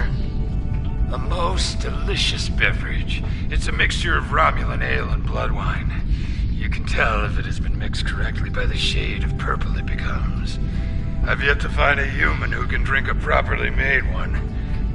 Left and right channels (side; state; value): both; identical; correlation 1.00